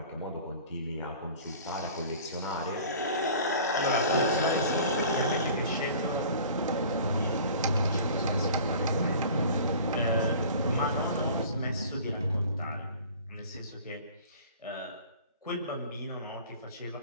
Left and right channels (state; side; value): inverted; both; correlation -0.44